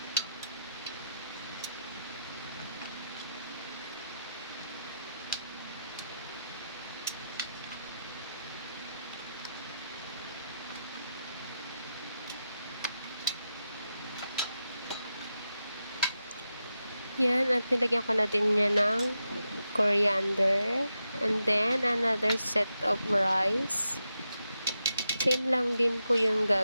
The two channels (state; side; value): inverted; both; correlation -0.87